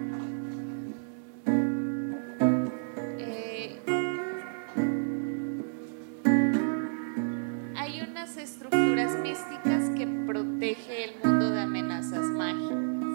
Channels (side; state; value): left; silent; digital silence